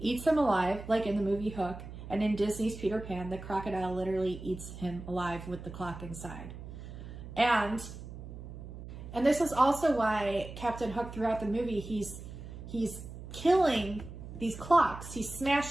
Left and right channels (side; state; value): right; noise; hum, 12 dB below the sound